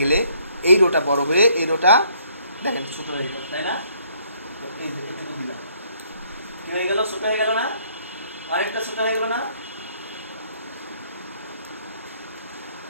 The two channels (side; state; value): both; inverted; correlation -0.66